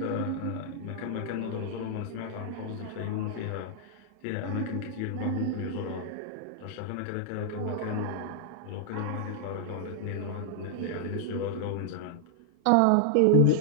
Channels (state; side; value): different; both; correlation -0.01